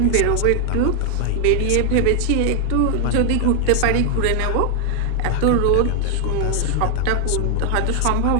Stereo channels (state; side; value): different; both; correlation 0.00